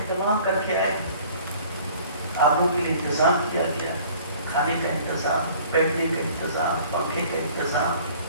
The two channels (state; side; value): inverted; both; correlation -0.51